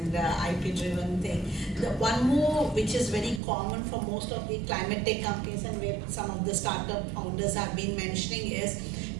IP-driven thing. The one more which is very common for most of the climate tech companies and where some of the startup founders have been mentioning is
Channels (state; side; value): drops out; left; at 3.4 s